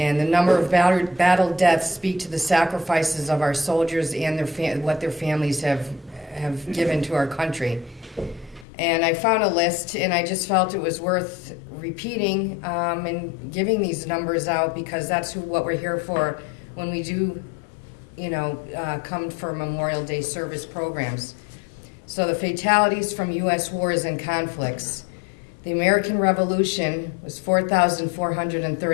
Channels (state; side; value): drops out; right; at 8.7 s